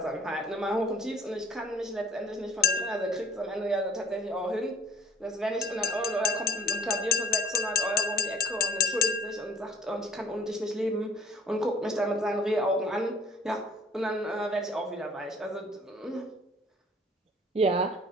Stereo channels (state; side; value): normal; both; correlation 0.52